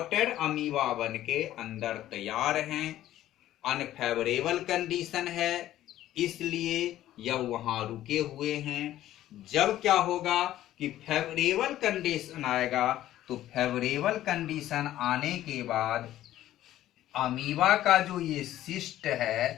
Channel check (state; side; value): quieter; right; 13.5 dB